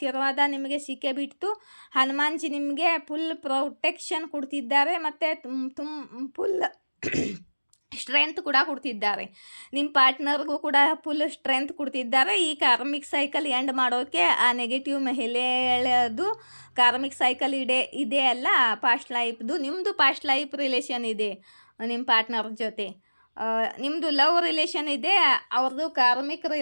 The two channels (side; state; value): both; inverted; correlation -1.00